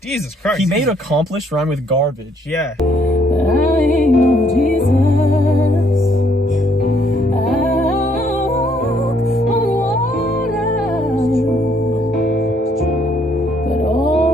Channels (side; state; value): both; normal; correlation 0.67